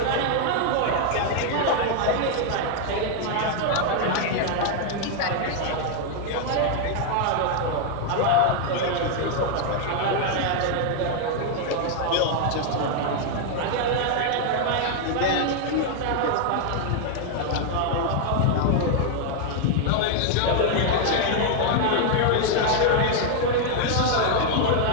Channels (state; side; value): different; both; correlation 0.00